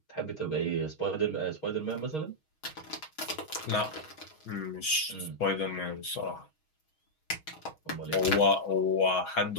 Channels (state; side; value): late; right; 6.4 ms